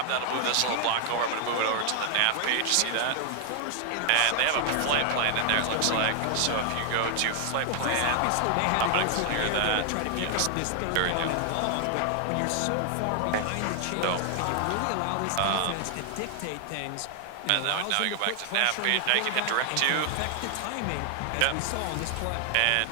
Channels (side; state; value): both; different; correlation 0.00